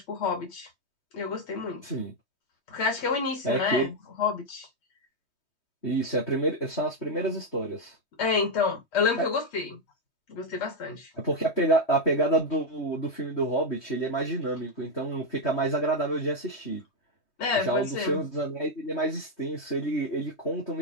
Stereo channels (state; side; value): late; right; 3.2 ms